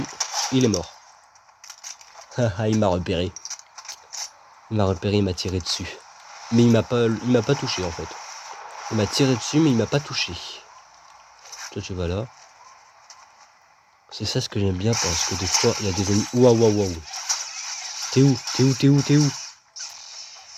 il est mort. Haha, il m'a repéré. Il m'a tiré dessus. Mais il m'a pas touché en fait. Il m'a tiré dessus mais il m'a pas touché. Toi tu vas là. C'est ça ce que j'aime bien parce que des fois il y a des ennemis. Waouh. T'es où?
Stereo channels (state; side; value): identical; both; correlation 1.00